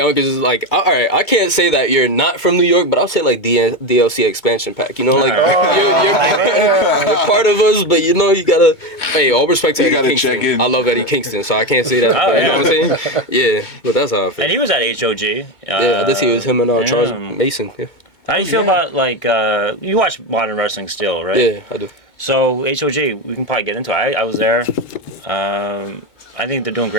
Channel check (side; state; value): right; late; 2.2 ms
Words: is like, all right, I can't say that you're not from New York, but I'll say like DLC expansion pack. You know, like you're part of us, but you know you gotta. Hey, all respect to Eddie Kingston. I love Eddie Kingston, so I can't say that. You know what I'm saying? Yeah, but that's how I feel. And he was at HOG. Yeah, I did see it was him and Charles Mason. Yeah. How do you feel about like you watch modern wrestling still, right? Yeah, I do. So HOG, we can probably get into it. I was there. I think they're doing